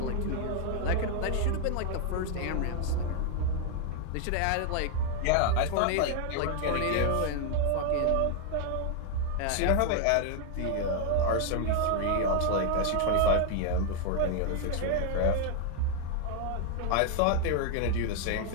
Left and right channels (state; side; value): different; both; correlation 0.01